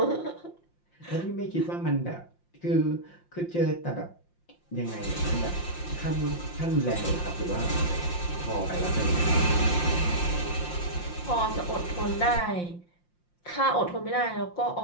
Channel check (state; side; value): late; right; 5.7 ms